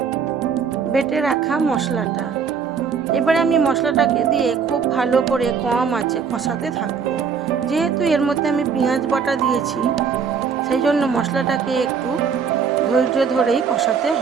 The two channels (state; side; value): quieter; left; 6.3 dB